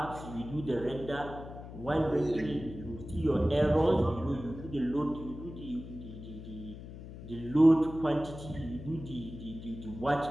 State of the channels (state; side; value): noise; left; hum, 12 dB below the sound